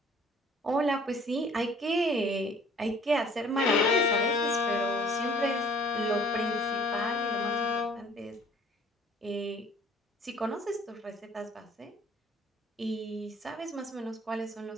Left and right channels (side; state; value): both; normal; correlation 0.54